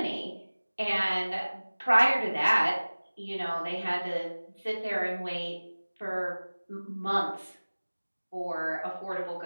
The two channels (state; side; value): inverted; both; correlation -1.00